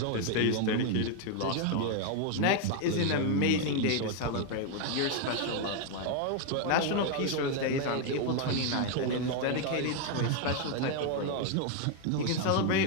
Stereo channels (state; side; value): different; both; correlation 0.01